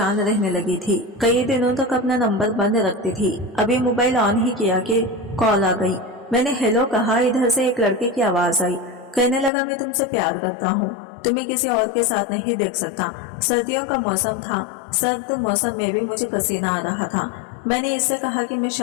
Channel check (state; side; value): drops out; right; at 9.5 s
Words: रहने लगी थी। कई दिनों तक अपना नंबर बंद रखती थी। अभी मोबाइल ऑन ही किया कि कॉल आ गई। मैंने हेलो कहा। इधर से एक लड़के की आवाज आई। कहने लगा, मैं तुमसे प्यार करता हूँ, तुम्हें किसी और के साथ नहीं देख सकता। सर्दियों का मौसम था। सर्द मौसम में भी मुझे पसीना आ रहा था। मैंने इससे कहा कि मैं